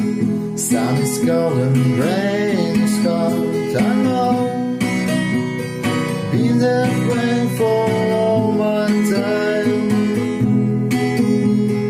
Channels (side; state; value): both; identical; correlation 1.00